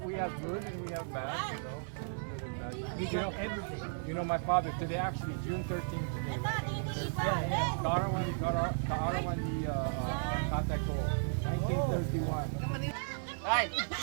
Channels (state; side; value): silent; left; digital silence